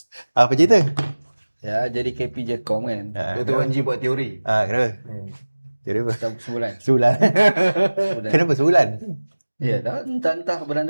Apa cerita? Ya, jadi KP Jecom kan. Dr. Wan G buat teori. Kenapa? Jadi apa? Sebulan. Sebulan. Kenapa sebulan? Ya, entah bulan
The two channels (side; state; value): both; inverted; correlation -1.00